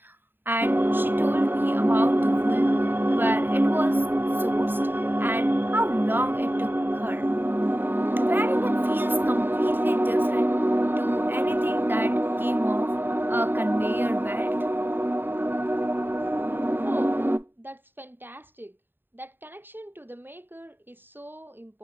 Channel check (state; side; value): late; left; 0.096 ms